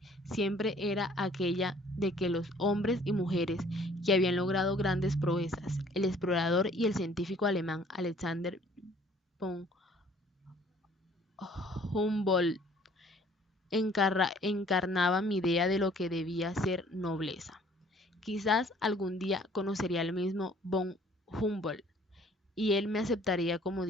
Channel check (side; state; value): both; normal; correlation 0.56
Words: siempre era aquella de que los hombres y mujeres que habían logrado grandes proezas, el explorador y el científico alemán Alexander von Humboldt, encarnaban mi idea de lo que debía ser nobleza. Quizás algún día conocería al mismo von Humboldt y él me aceptaría como